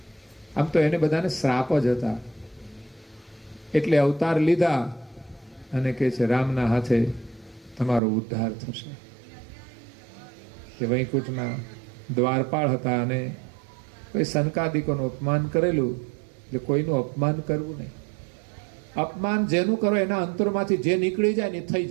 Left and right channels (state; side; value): drops out; left; at 8.0 s